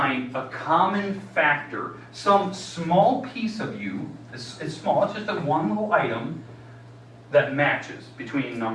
a common factor, some small piece of you, it's small, it's just a one little item, that matches between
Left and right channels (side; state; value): both; identical; correlation 1.00